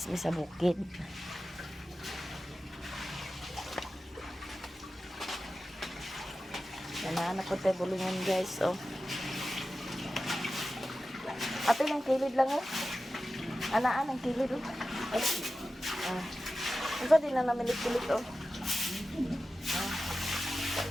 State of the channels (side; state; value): both; normal; correlation 0.94